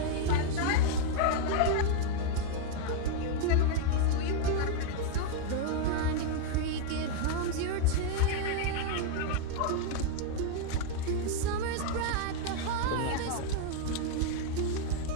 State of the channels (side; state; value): both; different; correlation 0.00